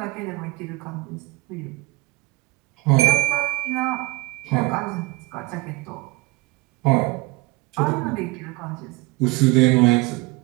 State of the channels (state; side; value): quieter; left; 21.1 dB